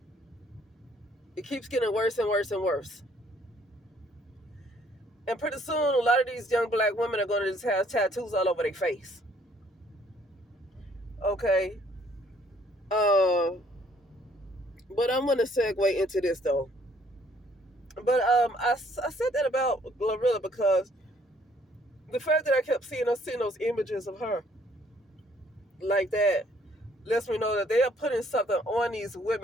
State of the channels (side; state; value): both; normal; correlation 0.63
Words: It keeps getting worse and worse and worse. And pretty soon, a lot of these young black women are going to just have tattoos all over their face. Okay. But I'm going to segue into this though. But I said that about Glorilla because the fact that I kept seeing those images of her like that lets me know that they are putting something on these